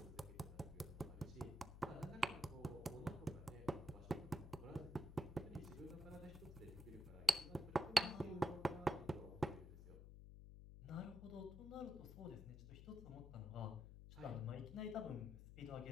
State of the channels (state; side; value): noise; left; hum, 12 dB below the sound